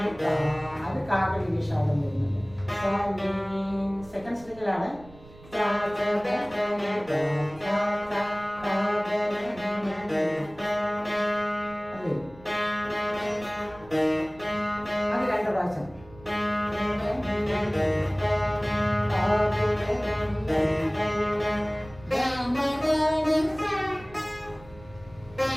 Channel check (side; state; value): right; noise; rumble, 21 dB below the sound